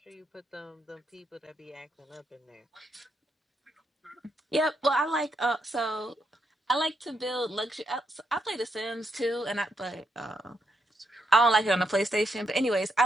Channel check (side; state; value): both; normal; correlation 0.79